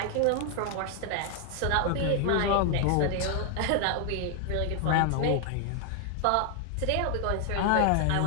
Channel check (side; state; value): both; different; correlation 0.00